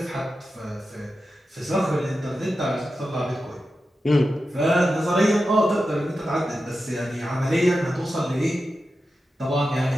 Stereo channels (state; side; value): normal; both; correlation 0.91